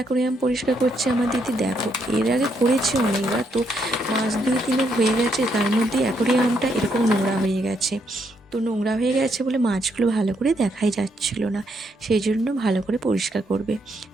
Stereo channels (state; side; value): normal; both; correlation 0.76